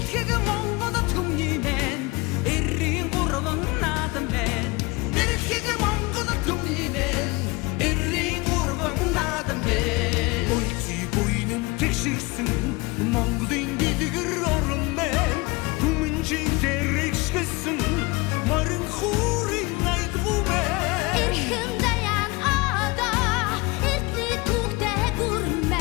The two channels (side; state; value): right; quieter; 24.6 dB